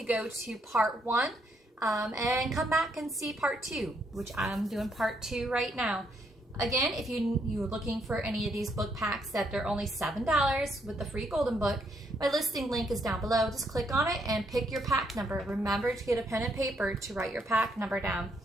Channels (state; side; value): normal; both; correlation 0.74